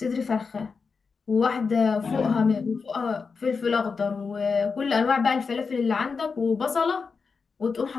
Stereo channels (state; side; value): quieter; right; 5.0 dB